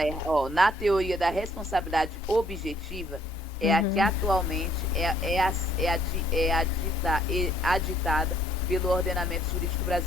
errada. Na teoria da responsabilidade objetiva, é a que atualmente aditada pelo ordenamento jurídico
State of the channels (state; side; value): normal; both; correlation 0.64